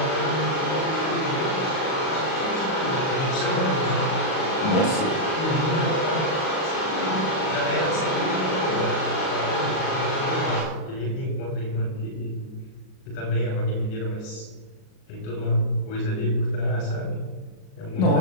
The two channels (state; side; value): late; right; 38 ms